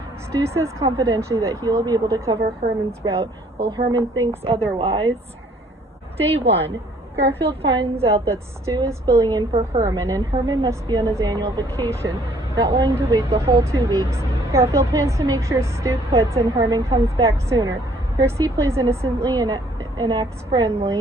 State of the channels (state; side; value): normal; both; correlation 0.61